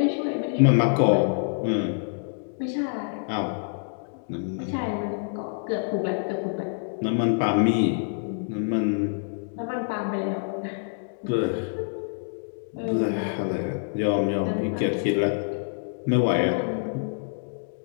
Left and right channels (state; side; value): silent; right; digital silence